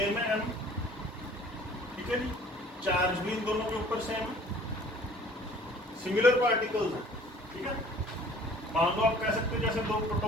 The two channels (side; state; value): both; normal; correlation 0.52